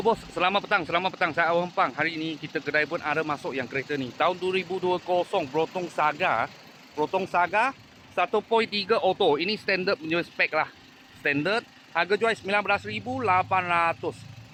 bos, selamat petang. Saya Awang Pang. Hari ini kita kedai pun ada masuk yang kereta ni. Tahun 2020 Brotong Saga. Brotong Saga 1.3 auto. Ini standard punya spek lah. Standard. Harga jual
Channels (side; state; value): both; identical; correlation 1.00